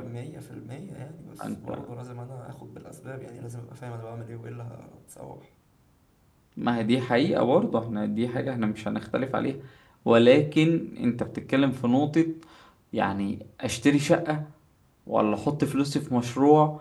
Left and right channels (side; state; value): both; identical; correlation 1.00